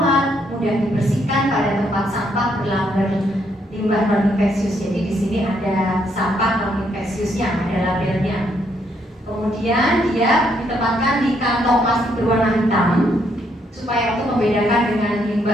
mudah didistribusikan pada tempat sampah berlamber limbah non-infeksius. Jadi di sini ada sampah non-infeksiusnya, ada labelnya. Kemudian dia ditempatkan di kantong plastik berwarna hitam supaya untuk membedakan dengan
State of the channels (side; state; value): both; normal; correlation 0.73